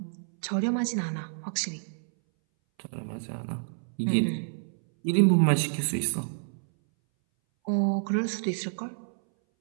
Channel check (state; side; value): silent; left; 59 dB below the other